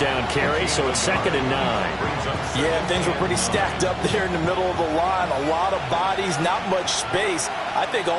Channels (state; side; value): identical; both; correlation 1.00